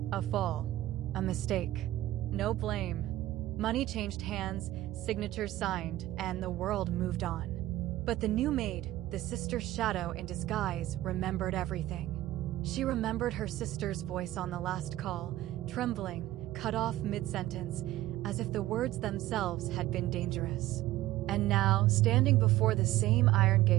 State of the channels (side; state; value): left; quieter; 15.5 dB